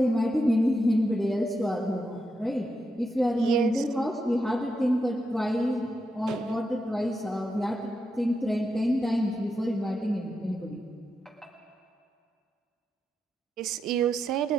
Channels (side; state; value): both; normal; correlation 0.85